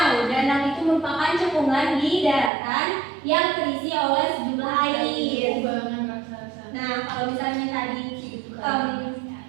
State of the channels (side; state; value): left; drops out; at 2.5 s